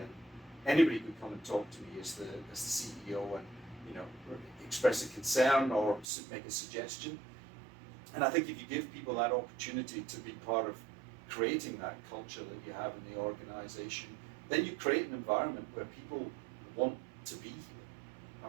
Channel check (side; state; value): left; drops out; at 6.1 s